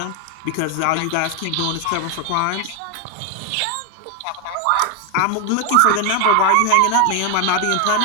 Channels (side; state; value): both; different; correlation 0.01